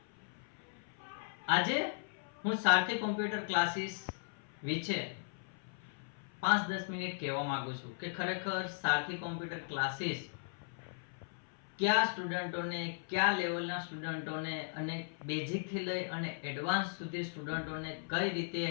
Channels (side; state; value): right; silent; 53 dB below the other